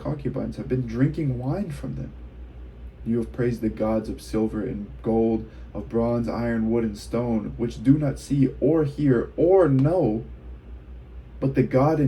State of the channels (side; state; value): both; identical; correlation 1.00